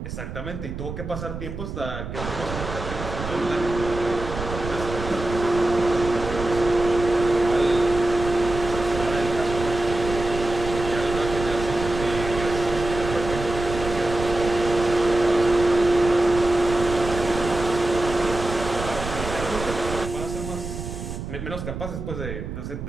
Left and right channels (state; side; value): noise; right; rumble, 8 dB below the sound